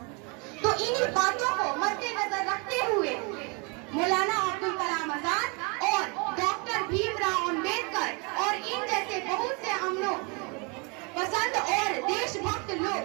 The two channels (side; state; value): left; quieter; 31.8 dB